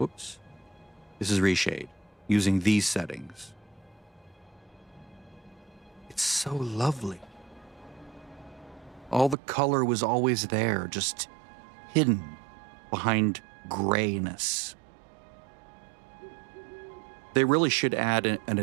This is ReShade using these settings. It's so lovely. All the color was always there, just hidden behind grayness. They really should add an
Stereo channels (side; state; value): left; drops out; at 9.3 s